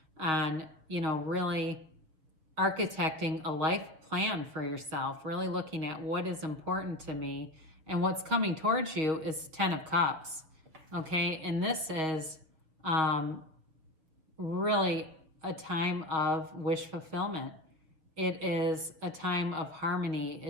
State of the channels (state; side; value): late; left; 6.6 ms